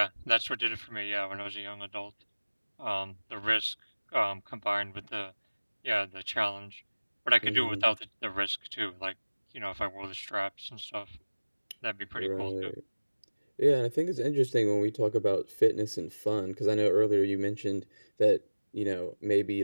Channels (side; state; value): both; inverted; correlation -1.00